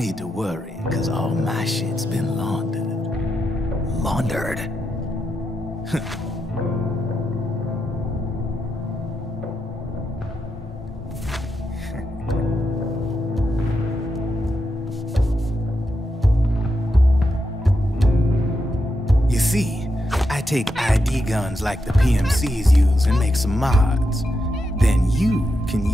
to worry, because all my shit's been laundered. Laundered? You see, I take ID guns like the PMCs use and make some mods. Then you can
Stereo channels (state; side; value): normal; both; correlation 0.85